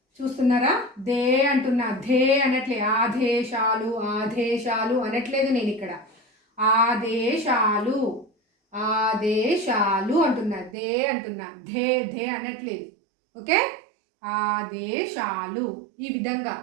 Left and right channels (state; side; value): drops out; left; at 10.8 s